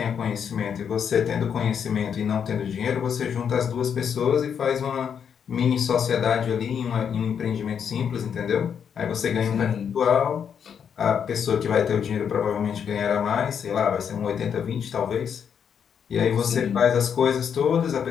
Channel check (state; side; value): quieter; right; 7.6 dB